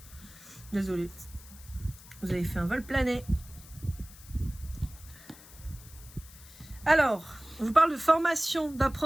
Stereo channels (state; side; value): noise; left; hiss, 20 dB below the sound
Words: Désolée. Vous avez fait un vol plané. Alors, on vous parle de formation,